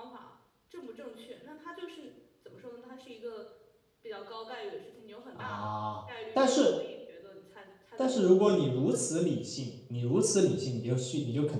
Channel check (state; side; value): identical; both; correlation 1.00